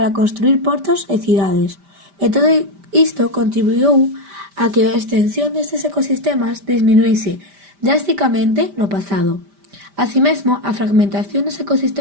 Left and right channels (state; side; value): late; left; 5.1 ms